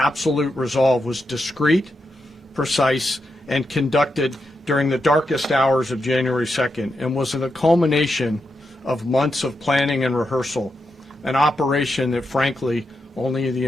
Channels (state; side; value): normal; both; correlation 0.85